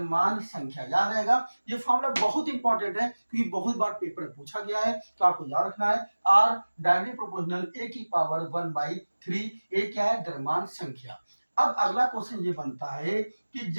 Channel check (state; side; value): inverted; both; correlation -1.00